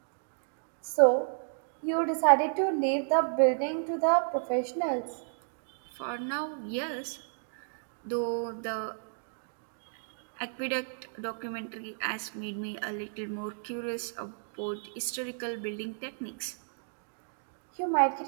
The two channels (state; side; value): silent; left; digital silence